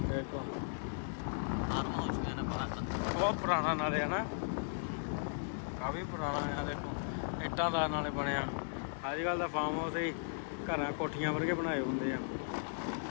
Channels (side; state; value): right; silent; digital silence